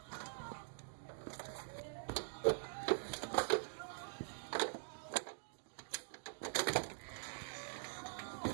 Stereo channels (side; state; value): left; silent; digital silence